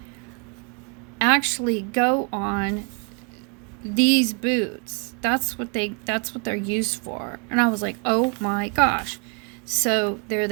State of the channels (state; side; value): quieter; left; 36.7 dB